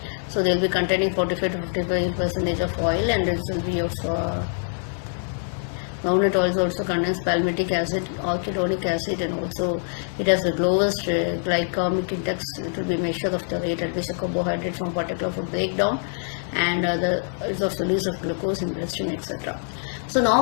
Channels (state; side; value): silent; right; 62 dB below the other